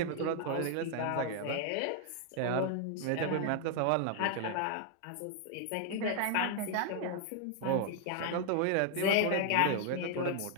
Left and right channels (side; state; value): both; different; correlation 0.00